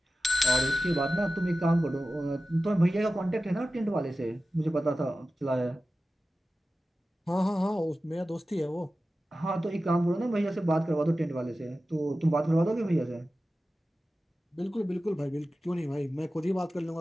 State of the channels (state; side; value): normal; both; correlation 0.94